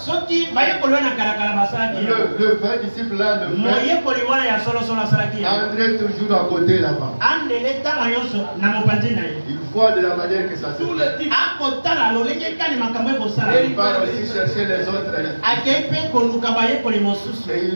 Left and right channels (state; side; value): inverted; both; correlation -1.00